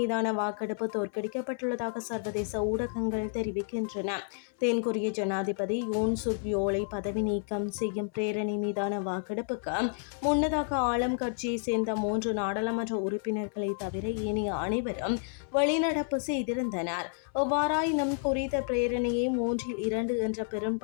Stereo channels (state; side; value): silent; right; 58 dB below the other